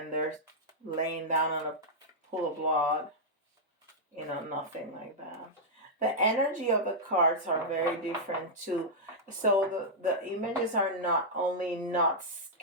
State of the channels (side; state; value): both; normal; correlation -0.08